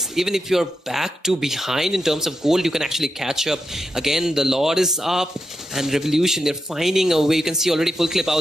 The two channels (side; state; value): both; normal; correlation 0.86